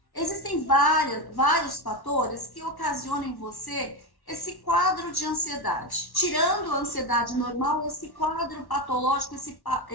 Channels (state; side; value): late; right; 1.1 ms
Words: existem vários fatores que ocasionam em você esse quadro de ansiedade. Tirando a ansiedade normal, esse quadro patológico,